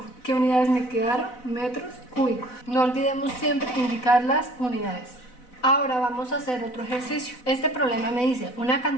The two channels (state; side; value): late; right; 4.0 ms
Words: ¿Qué unidades me quedaron? Metros cúbicos. No olvidemos siempre indicar las unidades. Ahora vamos a hacer otro ejercicio. Este problema me dice: una